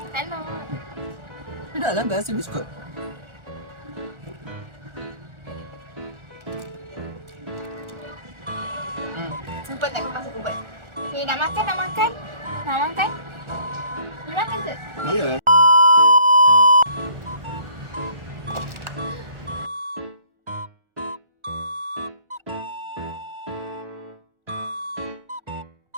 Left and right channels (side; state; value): left; late; 1.4 ms